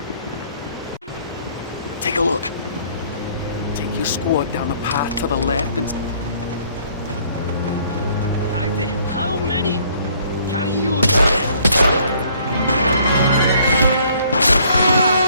Take a look. Take your squad down the path to the left and... How many can you use?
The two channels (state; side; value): inverted; both; correlation -0.61